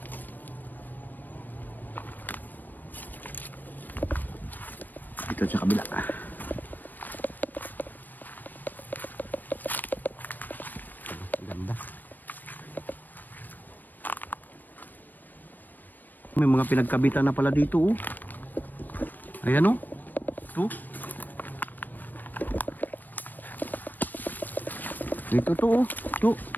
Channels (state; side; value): late; right; 0.089 ms